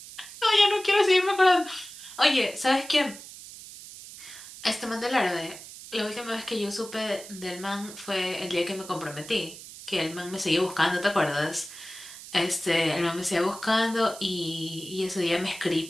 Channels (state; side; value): noise; right; hiss, 15 dB below the sound